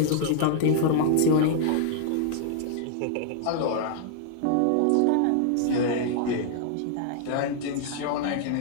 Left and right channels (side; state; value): both; different; correlation -0.01